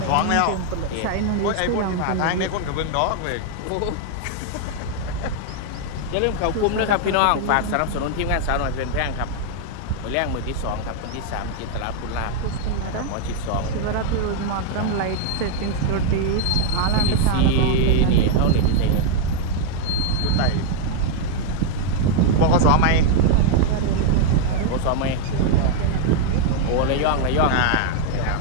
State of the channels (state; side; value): different; both; correlation 0.00